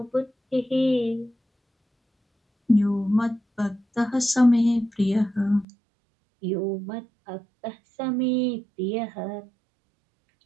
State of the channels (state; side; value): drops out; left; at 5.7 s